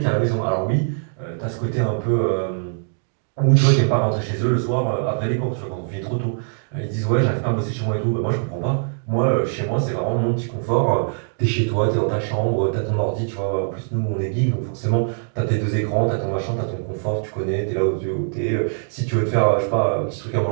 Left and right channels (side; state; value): left; silent; digital silence